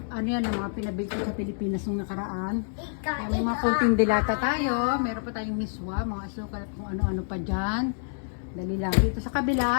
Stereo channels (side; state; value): right; silent; digital silence